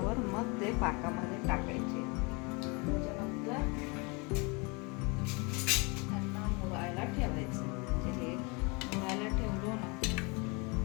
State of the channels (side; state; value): right; quieter; 30.0 dB